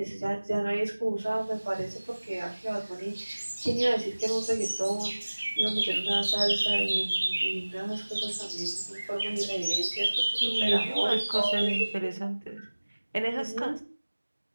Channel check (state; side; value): inverted; both; correlation -1.00